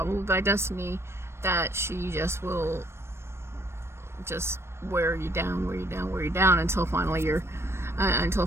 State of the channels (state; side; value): late; left; 0.12 ms